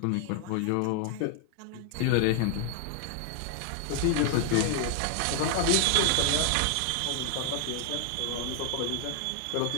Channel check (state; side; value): different; both; correlation 0.00